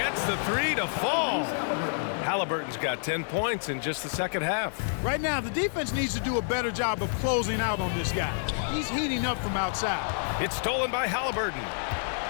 the 3 to fall. Halliburton's got 10 points in just the second half. Right now, the defense needs to do a better job of closing out on this guy. He's heating up from outside. It's stolen by Halliburton.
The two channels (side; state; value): right; silent; 56 dB below the other